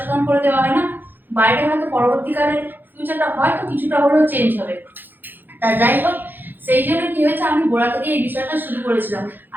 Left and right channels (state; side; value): late; left; 0.091 ms